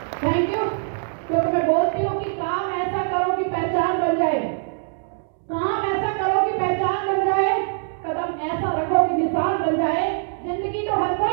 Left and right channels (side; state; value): left; silent; 63 dB below the other